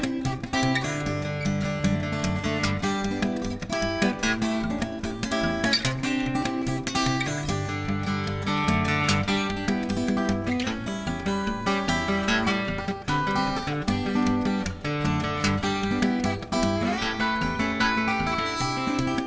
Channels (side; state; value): both; identical; correlation 1.00